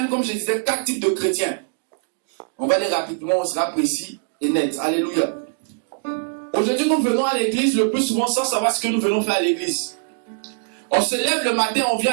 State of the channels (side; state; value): left; silent; digital silence